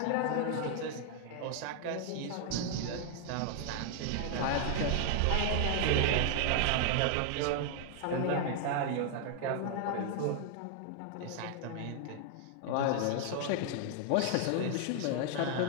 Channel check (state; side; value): different; both; correlation 0.00